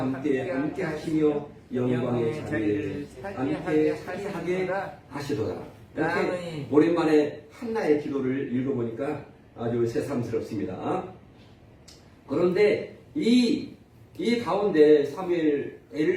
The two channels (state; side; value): identical; both; correlation 1.00